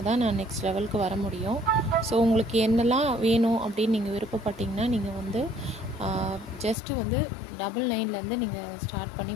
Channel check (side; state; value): right; drops out; at 6.8 s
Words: தான் நான் நெக்ஸ்ட் லெவலுக்கு வர முடியும். ஸோ உங்களுக்கு என்னெல்லாம் வேணும் அப்படின்னு நீங்கள் விருப்பப்பட்டீங்கன்னா நீங்கள் ஜஸ்ட்டு 99லேருந்து நீங்கள் ஸ்டார்ட் பண்ணி